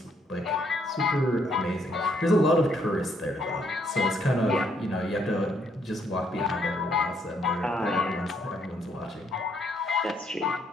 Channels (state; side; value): normal; both; correlation 0.70